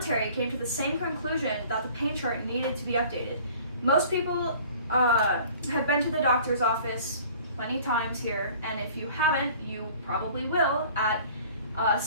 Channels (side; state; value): both; inverted; correlation -0.49